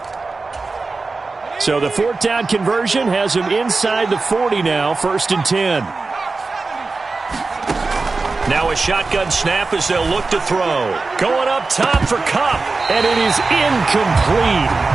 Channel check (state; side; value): quieter; left; 3.9 dB